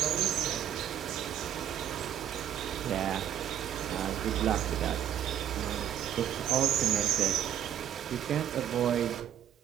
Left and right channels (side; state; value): left; quieter; 10.3 dB